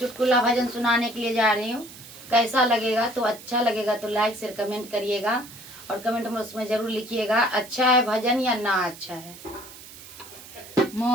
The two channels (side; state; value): right; noise; hiss, 17 dB below the sound